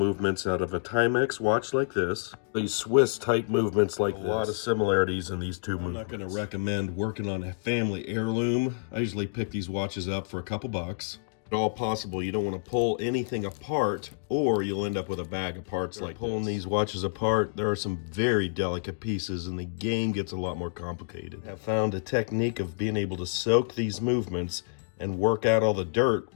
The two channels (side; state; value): right; silent; digital silence